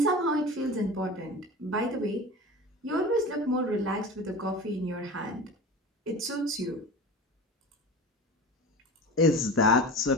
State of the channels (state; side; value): normal; both; correlation 0.33